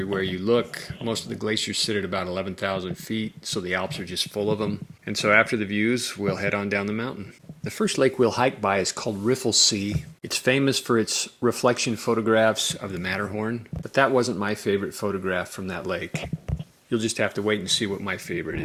you look. Most of the glaciers sit at about 11,000 feet, so the Alps are just full of them. And so after the views, we'll head on down the mountain. The first lake we'll hike by is called Riffelsee. It's famous for its reflection photographs of the Matterhorn, but that wasn't my favorite photograph from that lake. You'll just have to wait and see what my favorite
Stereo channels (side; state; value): both; identical; correlation 1.00